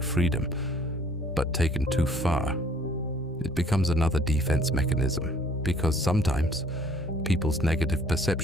freedom, but taken too far, it becomes another defense mechanism, because sometimes people's negative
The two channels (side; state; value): both; normal; correlation 0.57